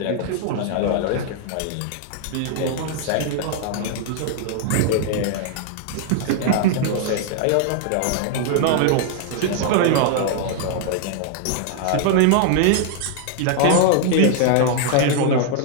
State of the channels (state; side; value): different; both; correlation -0.01